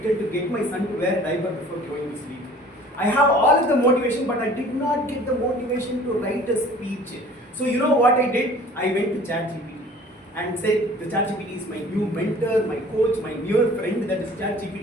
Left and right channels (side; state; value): both; normal; correlation 0.49